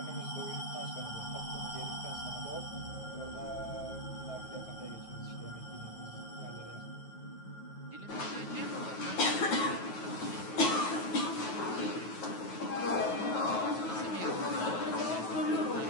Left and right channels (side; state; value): right; late; 9.3 ms